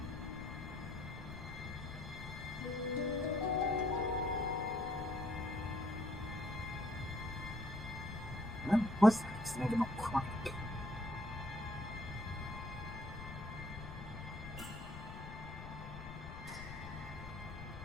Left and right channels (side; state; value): left; noise; rumble, 10 dB below the sound